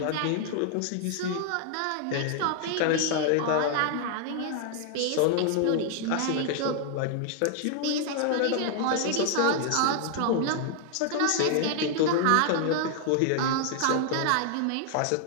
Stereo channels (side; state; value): both; different; correlation 0.00